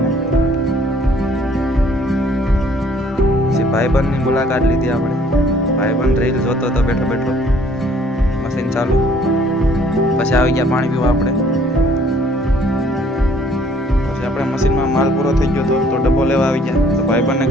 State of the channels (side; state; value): both; normal; correlation 0.59